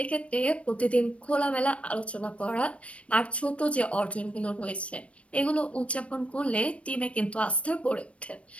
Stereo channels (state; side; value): late; right; 0.062 ms